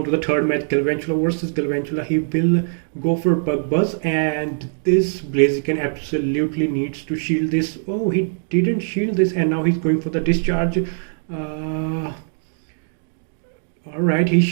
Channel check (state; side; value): silent; left; digital silence